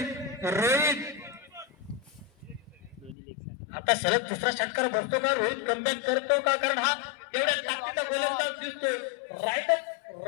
रोहित दोन्ही लेग आता सलग दुसरा षटकार बसतो का, रोहित कमबॅक करतो का, कारण हा एवढ्या ताकदीचा गोलंदाज दिसतोय. राईट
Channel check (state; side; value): drops out; right; at 3.2 s